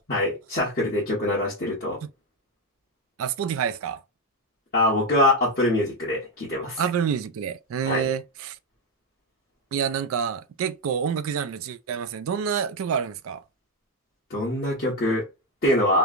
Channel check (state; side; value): normal; both; correlation 0.08